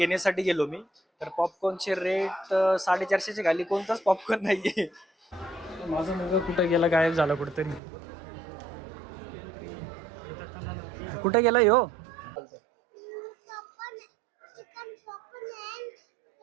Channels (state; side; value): drops out; left; at 7.8 s